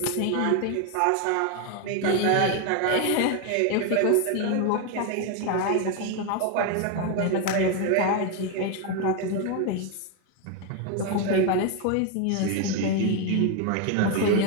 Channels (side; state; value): both; different; correlation 0.01